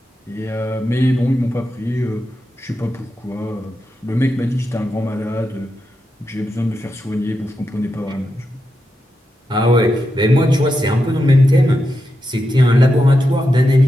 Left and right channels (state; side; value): normal; both; correlation 0.87